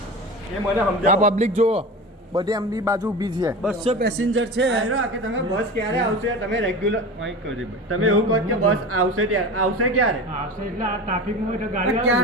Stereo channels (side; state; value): both; normal; correlation 0.31